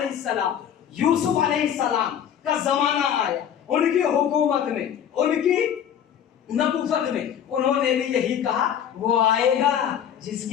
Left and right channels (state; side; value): quieter; right; 9.2 dB